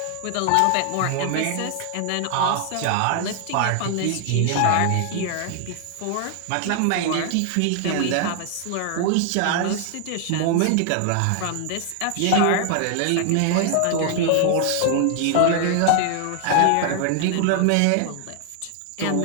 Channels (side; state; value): both; different; correlation 0.00